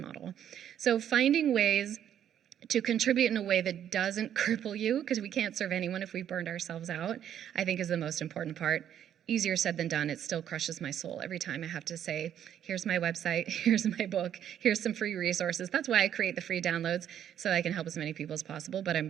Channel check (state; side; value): quieter; left; 10.0 dB